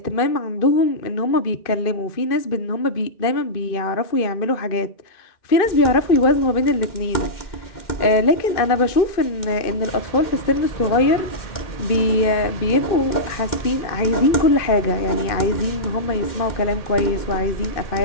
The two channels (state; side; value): late; right; 2.5 ms